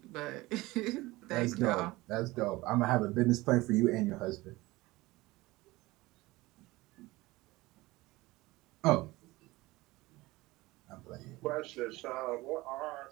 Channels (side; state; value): left; quieter; 20.2 dB